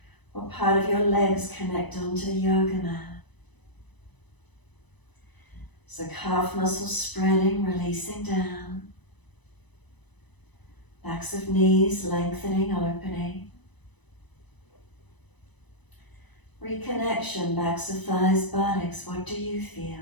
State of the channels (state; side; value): late; right; 1.0 ms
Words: What part of your legs connect onto the yoga mat? So calf muscles spreading, releasing down. Backs of knees lengthening, opening. Reconnection, backs of thighs, buttocks. What do you